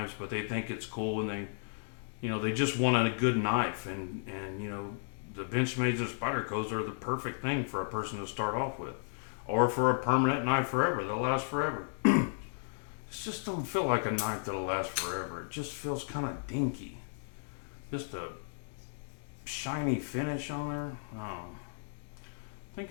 but they think it's cool and they, you know, they just want a good knife. And you know, the Benchmades or Spydercos are the perfect thing for a person to start off with. Or for a permanent knife forever, that'll last forever. It just don't feel like a knife that'll last forever. It just feels kind of dinky. Just a shiny finish on there. Oh. I think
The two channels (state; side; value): silent; right; digital silence